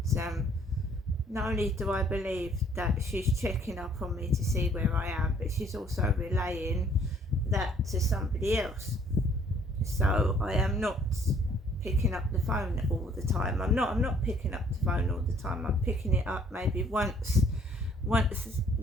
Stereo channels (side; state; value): both; normal; correlation 0.61